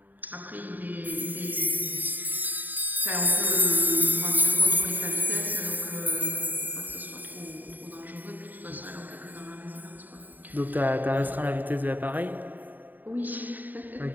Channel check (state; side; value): late; left; 0.087 ms